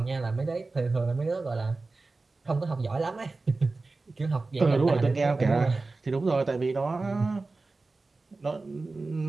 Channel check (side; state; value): left; quieter; 3.6 dB